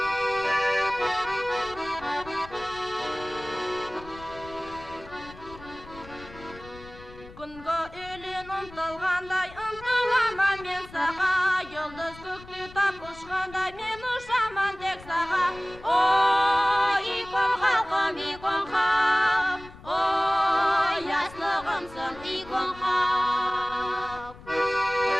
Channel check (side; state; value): left; noise; rumble, 19 dB below the sound